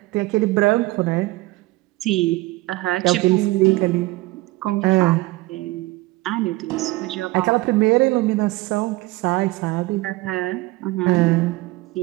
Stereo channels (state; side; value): quieter; left; 20.7 dB